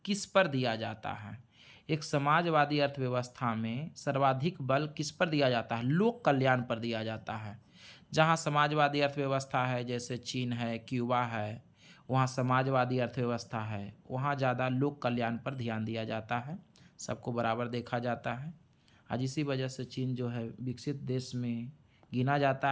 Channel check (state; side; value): identical; both; correlation 1.00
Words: किस पर दिया जाता है? एक समाजवादी अर्थव्यवस्था में सर्वाधिक बल किस पर दिया जाता है? लोक कल्याण पर दिया जाता है। जहाँ समाजवादी अर्थव्यवस्था है, जैसे चीन है, क्यूबा है, वहाँ समाजवादी अर्थव्यवस्था है, वहाँ ज़्यादा लोक कल्याण पर ध्यान दिया जाता है, सबको बराबर देखा जाता है। आज इसी वजह से चीन जो है विकसित देश में गिना